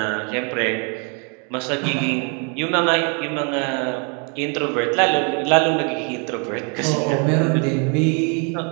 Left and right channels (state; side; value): quieter; left; 36.4 dB